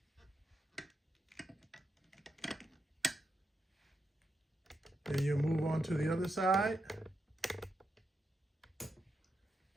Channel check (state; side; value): normal; both; correlation 0.85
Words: Then you move on to the other side.